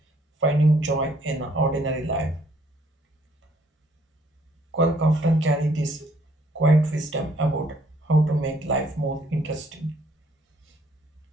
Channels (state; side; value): normal; both; correlation 0.65